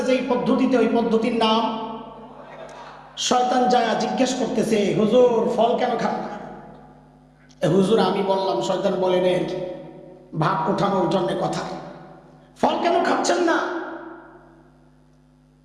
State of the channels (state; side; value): identical; both; correlation 1.00